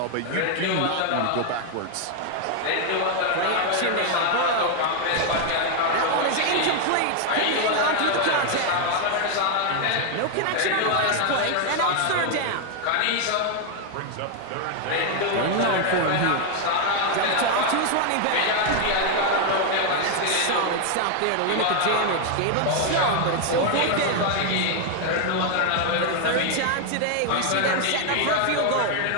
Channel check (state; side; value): different; both; correlation 0.00